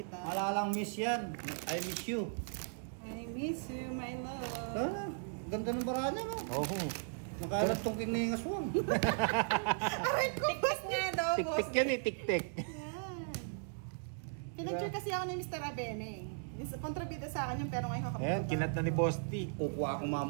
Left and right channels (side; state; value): left; silent; digital silence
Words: Malalang miss yan. I miss you. I miss you, my love. Sana. Ganda ng bara niya. No? Oh, Nakalat tong kiningas mo. Aray ko, Boss D. Nga daw, Boss tik-tik yan eh, tik-tik. Yan. Pinagture kasi ako ni Mr. Abeneng. Kontrabida sa akin yung pero ngayon kakapagod. Ayan, kinat na ni Boss T. Kukuha akong